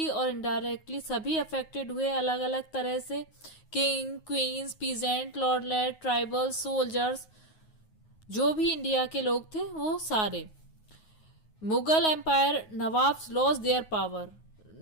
और इनडायरेक्टली सभी अफेक्टेड हुए अलग अलग तरह से। किंग, क्वींस, पीजेंट, लॉर्डलेट, ट्राइबल, सोल्जर्स, जो भी इंडिया के लोग थे वो सारे। Mughal empire nawabs lost their power.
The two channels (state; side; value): late; right; 9.4 ms